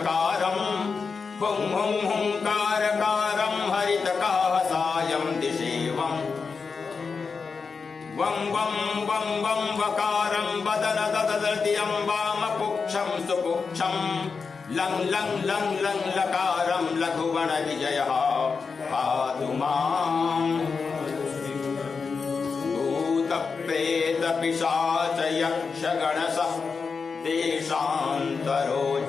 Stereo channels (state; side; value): quieter; right; 5.1 dB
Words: हुं हुं हुंकारकारं हरितकाहसायं दिशेवम् वं वं वं वं वकारं वदन दददतियं वामपुक्षं सुपुक्षं लं लं लं लं लकारं लघुगणविजयः पातु माम्। भूतप्रेतपिशाच यक्षगणसः देशान्तरोच्चाटना